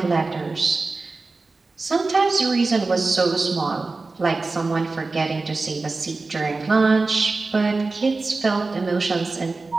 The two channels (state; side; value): quieter; left; 3.7 dB